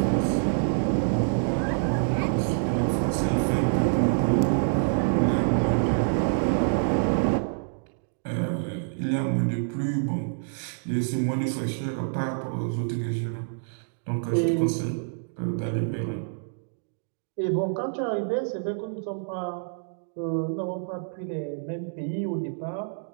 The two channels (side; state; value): left; silent; digital silence